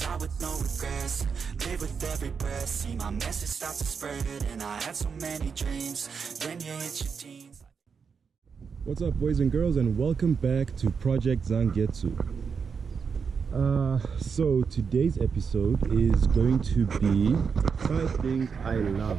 with no regrets. Live with every breath, see my message start to spread. And I had so many dreams, when you hit your teens. What's up, boys and girls, and welcome back to Project Zangetsu. So today's episode is going to be 5 things I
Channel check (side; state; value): left; quieter; 6.0 dB